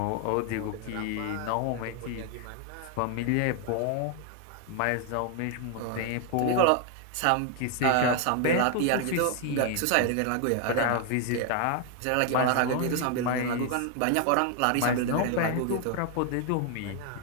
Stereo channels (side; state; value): both; different; correlation 0.00